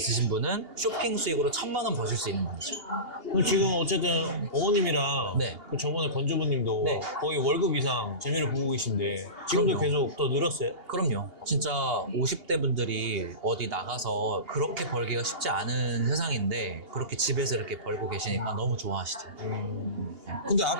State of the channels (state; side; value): late; left; 2.8 ms